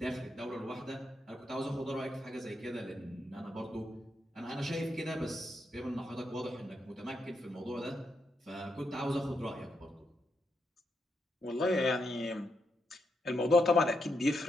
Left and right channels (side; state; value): both; normal; correlation 0.82